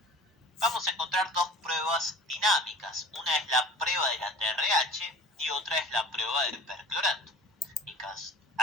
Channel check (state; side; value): normal; both; correlation 0.41